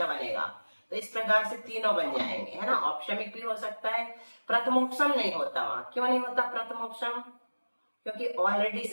बनेगा। तो इस प्रकार से तीनों बन जाएंगे, है ना। औपशमिक भी हो सकता है, प्रथमोपसम नहीं होता वहाँ। क्यों नहीं होता प्रथमोपसम? क्योंकि ऑलरेडी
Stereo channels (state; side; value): inverted; both; correlation -1.00